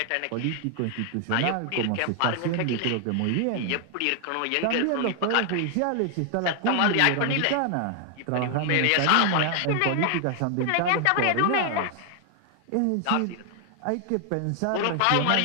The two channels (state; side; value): different; both; correlation 0.00